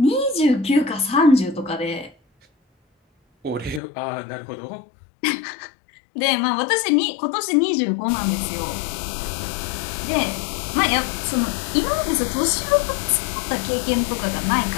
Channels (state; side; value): drops out; right; at 3.8 s